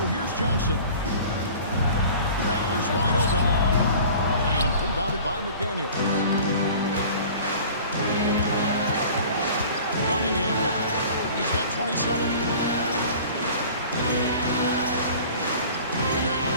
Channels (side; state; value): both; inverted; correlation -0.44